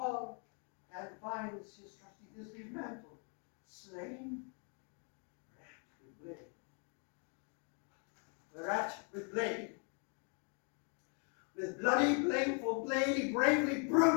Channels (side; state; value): right; quieter; 39.8 dB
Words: and finds his trusty Thisbe's mantle slain, whereat with blade. With bloody, blameful blade, he bravely